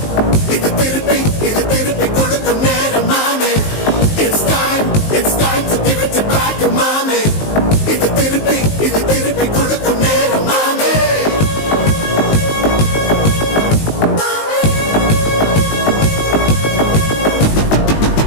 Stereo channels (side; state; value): right; late; 19 ms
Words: இது திருப்பி கொடுக்கும் நேரம் மாமே. It's time to give it back to mommy. இது திருப்பி கொடுக்கும் நேரம் மாமே.